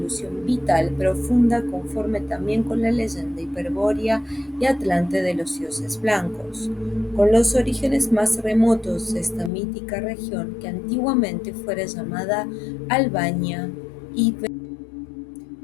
vital, profunda, conforme también con la leyenda hiperbórea y atlante de los dioses blancos, con los orígenes más remotos de esta mítica región que antiguamente fuera llamada Albania y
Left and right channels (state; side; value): drops out; right; at 9.5 s